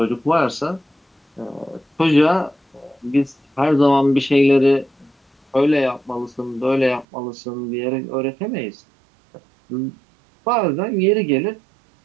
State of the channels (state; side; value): drops out; left; at 7.1 s